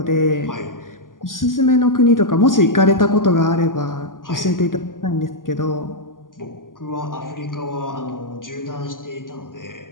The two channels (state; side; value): late; right; 0.90 ms